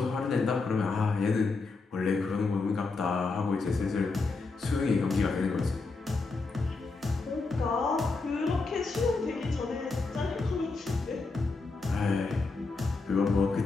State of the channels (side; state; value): right; quieter; 3.9 dB